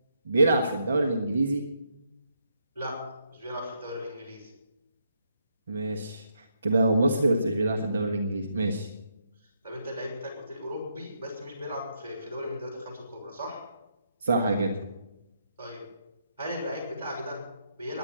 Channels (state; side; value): inverted; both; correlation -0.77